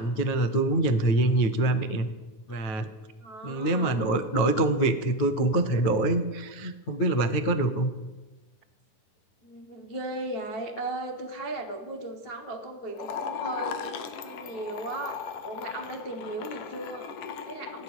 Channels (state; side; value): late; right; 9.3 ms